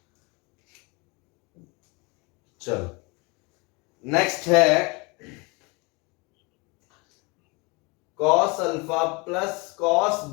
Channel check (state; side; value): quieter; right; 28.2 dB